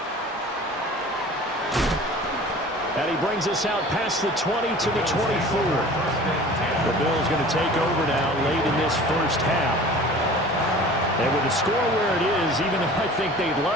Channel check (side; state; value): both; normal; correlation 0.43